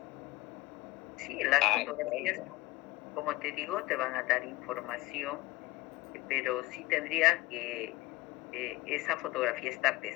Sí, las fotografías, como te digo, te van a dar información, pero sí tendría que esa fotografía estar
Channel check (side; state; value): right; quieter; 19.0 dB